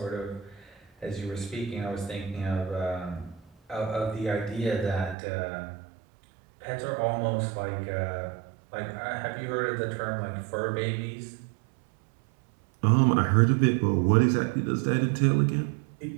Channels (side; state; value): left; drops out; at 5.2 s